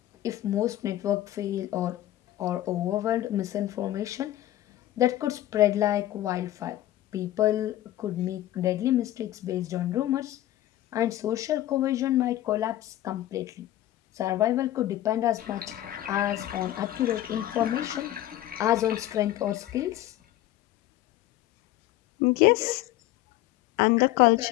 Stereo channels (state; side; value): quieter; right; 14.2 dB